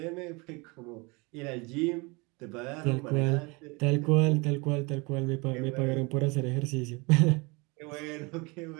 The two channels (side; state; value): left; quieter; 27.4 dB